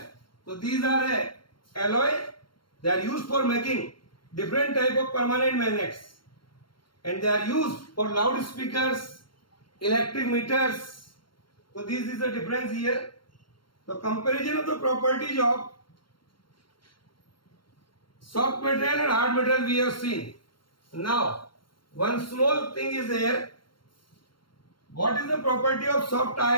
So these are a alloy. They are used for making different type of permanent magnets, and they are used for loudspeakers, electric meters. So this is the difference here. The comparison of the properties of soft material and hard material we have seen. Now, one small thing is there. What is the property of soft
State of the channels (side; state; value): right; late; 0.72 ms